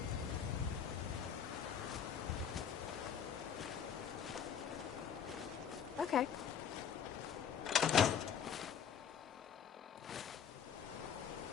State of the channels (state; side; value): quieter; right; 7.8 dB